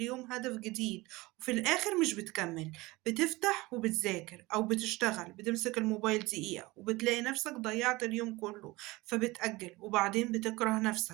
هدف جديد. وفي الآخر مش بتكمل، بتفتح وبتذاكر أو بتشتغل، بتمسك الموبايل دقيقة وبتلاقي نفسك ضيعت اليوم كله. فبتأجل وبعدين بتكره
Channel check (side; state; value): left; quieter; 21.5 dB